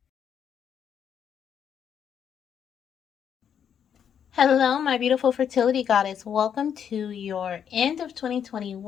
Hello, my beautiful fertility goddess. Welcome to your end of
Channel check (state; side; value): quieter; right; 8.3 dB